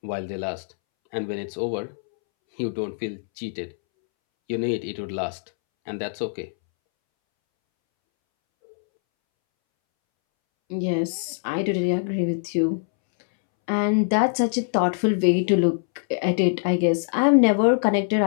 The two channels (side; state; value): right; silent; 63 dB below the other